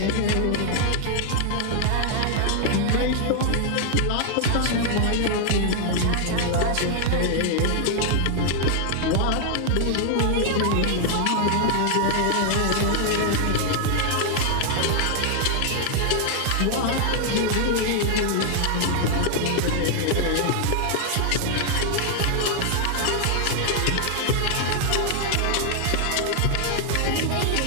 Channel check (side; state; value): both; different; correlation 0.00